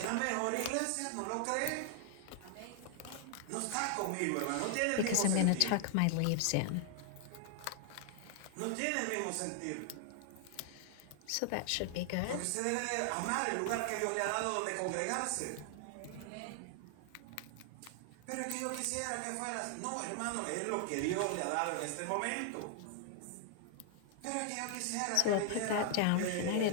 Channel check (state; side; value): different; both; correlation 0.00